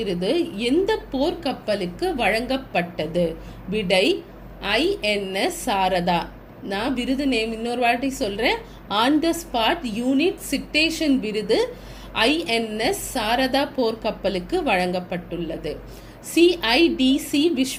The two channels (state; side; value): identical; both; correlation 1.00